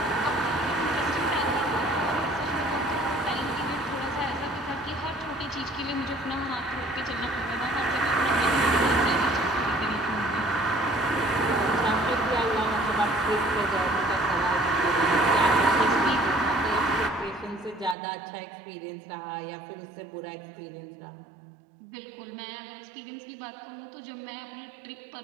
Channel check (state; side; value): drops out; left; at 17.9 s